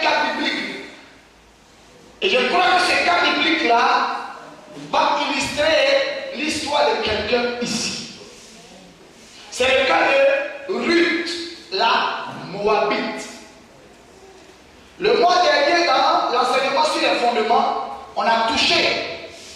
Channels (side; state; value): both; identical; correlation 1.00